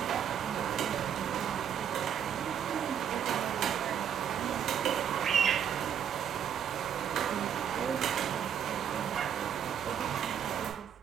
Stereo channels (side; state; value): left; quieter; 8.7 dB